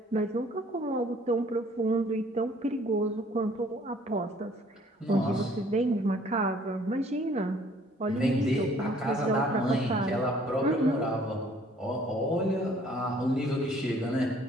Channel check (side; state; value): both; normal; correlation 0.58